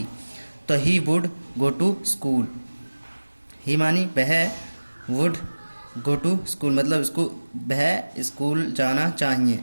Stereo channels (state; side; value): inverted; both; correlation -1.00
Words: तो he would go to school, he मानी वह वुड गो टू स्कूल मतलब इसको वह स्कूल जाना चाहिए,